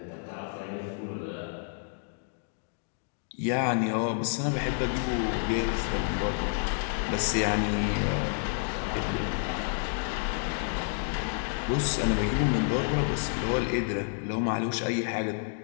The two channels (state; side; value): silent; right; 58 dB below the other